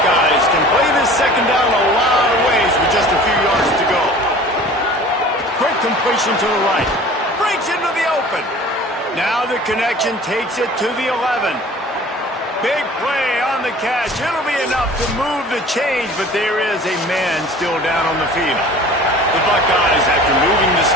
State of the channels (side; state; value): both; normal; correlation 0.44